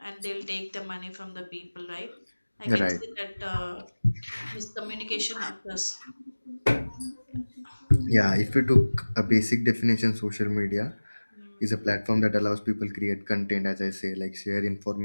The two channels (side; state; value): both; inverted; correlation -1.00